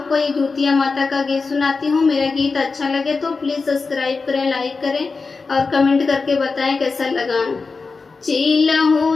को ये दूतिया माता का गीत सुनाती हूँ। मेरा गीत अच्छा लगे तो प्लीज़ सब्सक्राइब करें, लाइक करें और कमेंट करके बताएं कैसा लगा। चील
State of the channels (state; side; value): quieter; right; 4.3 dB